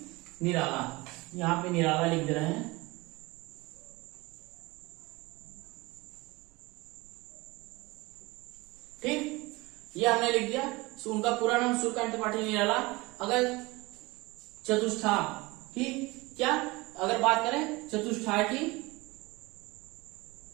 निराला, यहां पे निराला लिख दे रहे हैं। ठीक, ये हमने लिख दिया। उनका पूरा नाम सूर्यकांत त्रिपाठी निराला। अगर चतुष्ठाय, ठीक, क्या अगर बात करें चतुष्ठाय की,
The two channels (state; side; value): quieter; left; 22.9 dB